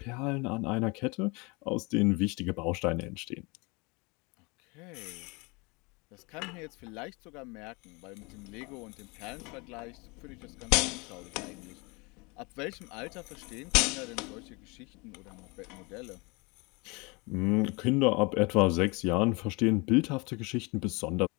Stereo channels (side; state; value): right; quieter; 27.8 dB